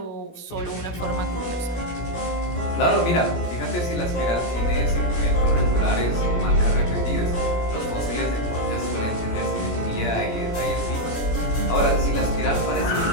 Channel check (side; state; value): right; late; 17 ms